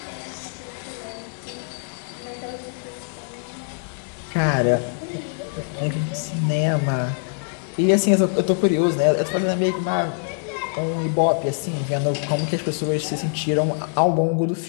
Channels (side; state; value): right; silent; 63 dB below the other